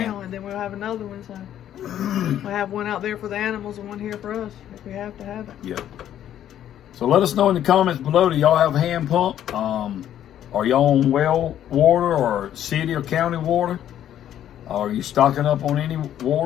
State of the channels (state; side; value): quieter; right; 11.0 dB